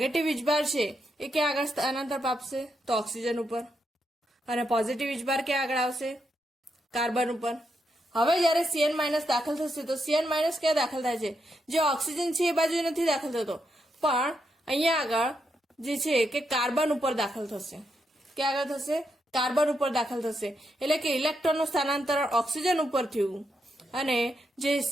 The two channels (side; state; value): both; normal; correlation 0.82